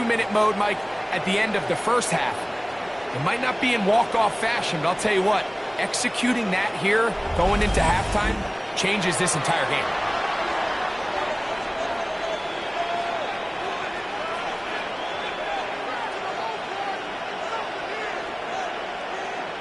mode, Mike, at the end of the 1st half. It might not be in walk-off fashion, but I'll tell you what, executing that here going into halftime changes this entire game.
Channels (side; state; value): both; identical; correlation 1.00